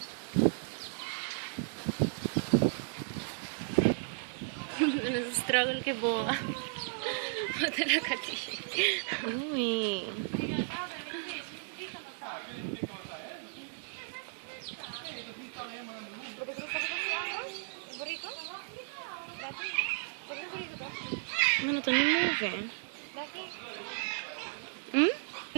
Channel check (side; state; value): left; silent; digital silence